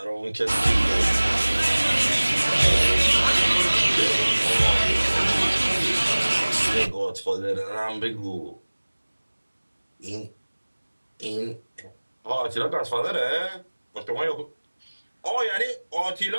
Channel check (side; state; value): both; inverted; correlation -1.00